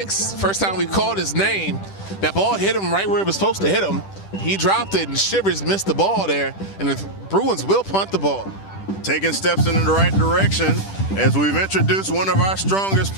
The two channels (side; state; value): right; late; 10 ms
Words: First time we called his name. That ball hit him right where it was supposed to hit him. He dropped it, and Shivers missed the ball there. And the Bruins will punt the ball. Taking steps in the right direction. As we've introduced one of our strongest